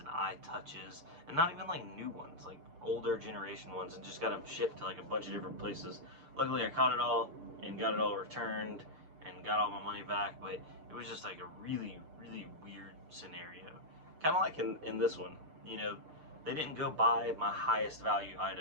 iTouches, and not even like new ones, like older generation ones, and just got them shipped to like a bunch of different places. Luckily, I caught it all and got it all returned and got all my money back, but it was just like a really, really weird scenario. Kind of like in this one, you know, they didn't go buy my highest value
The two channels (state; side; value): late; left; 6.7 ms